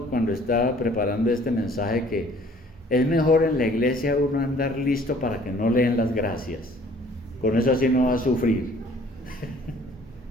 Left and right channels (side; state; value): both; normal; correlation 0.55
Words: cuando estaba preparando este mensaje que es mejor en la iglesia uno andar listo para que no le den las gracias. Con eso así no va a sufrir.